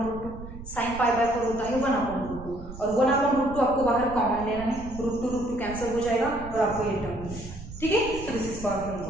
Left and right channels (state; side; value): noise; right; rumble, 12 dB below the sound